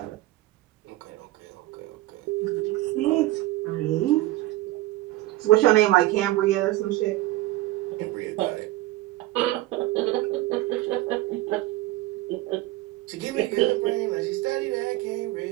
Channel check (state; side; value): quieter; left; 17.4 dB